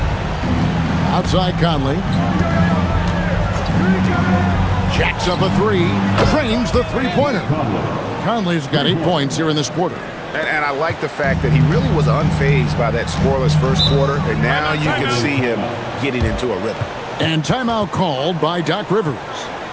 Outside Conley. Jacks up a 3. Trains the three-pointer. Conley's got 8 points here in this quarter. And I like the fact that he really was unfazed by that scoreless first quarter, and now you can see him getting into a rhythm. And timeout called by Doc Rivers.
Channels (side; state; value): both; identical; correlation 1.00